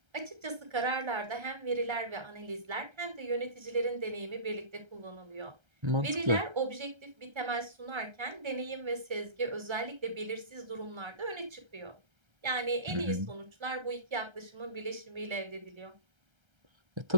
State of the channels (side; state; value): left; late; 1.3 ms